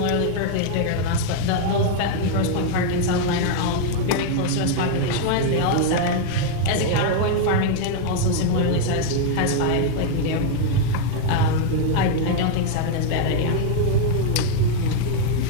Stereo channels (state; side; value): different; both; correlation 0.00